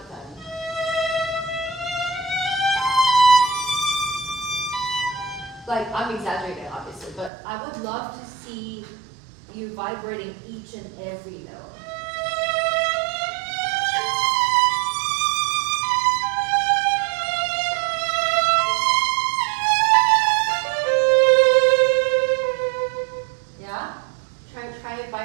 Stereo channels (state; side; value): drops out; left; at 7.3 s